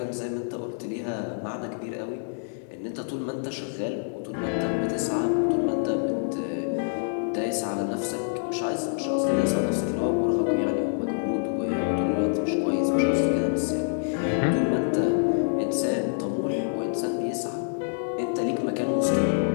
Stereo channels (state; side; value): silent; right; digital silence